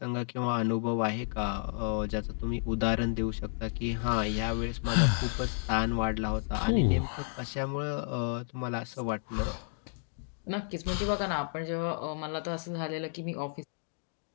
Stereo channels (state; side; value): silent; right; digital silence